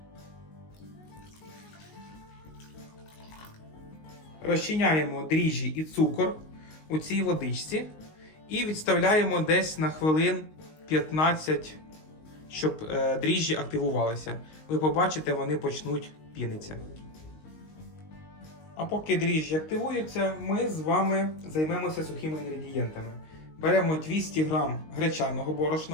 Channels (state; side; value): late; right; 19 ms